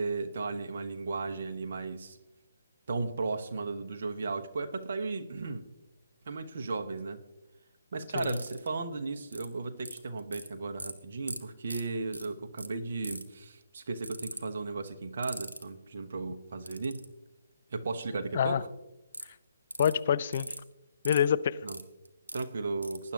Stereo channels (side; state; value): both; inverted; correlation -0.75